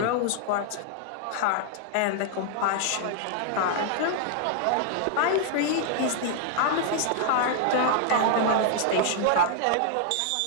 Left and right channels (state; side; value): different; both; correlation 0.00